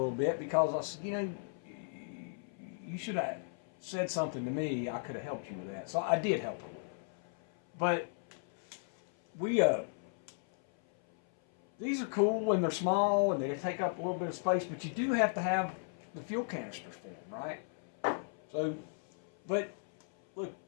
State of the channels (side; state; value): right; silent; 54 dB below the other